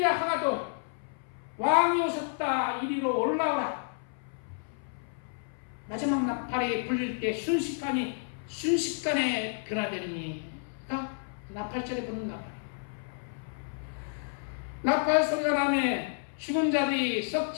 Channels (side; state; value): right; silent; 57 dB below the other